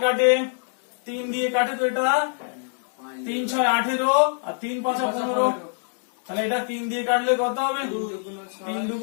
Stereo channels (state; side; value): silent; right; digital silence